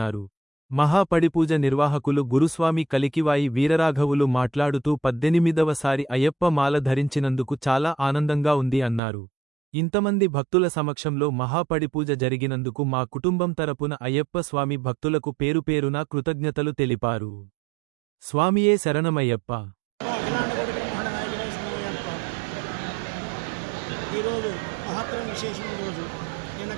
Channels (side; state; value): left; drops out; at 9.0 s